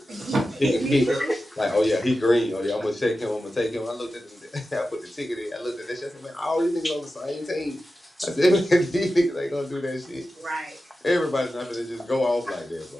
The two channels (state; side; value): normal; both; correlation 0.93